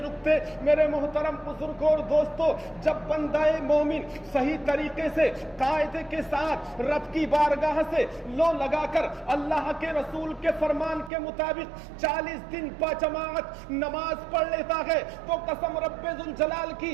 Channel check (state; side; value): drops out; left; at 11.1 s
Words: رکتے۔ میرے محترم بزرگ اور دوستو، جب بندہ مومن صحیح طریقے سے قاعدے کے ساتھ رب کی بارگاہ سے لو لگا کر اللہ کے رسول کے فرمان کے مطابق 40 دن با جماعت نماز پڑھ لیتا ہے، تو قسم رب ذوالجلال